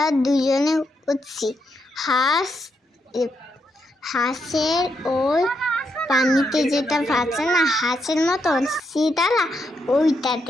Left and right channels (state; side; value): normal; both; correlation 0.80